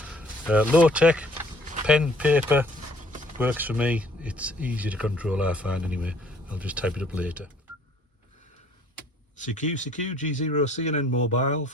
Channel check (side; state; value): both; normal; correlation 0.58